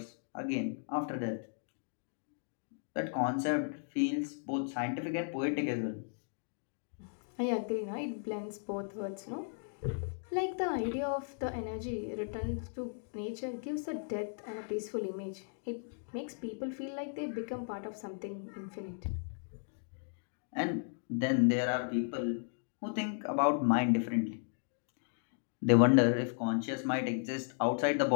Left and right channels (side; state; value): right; silent; digital silence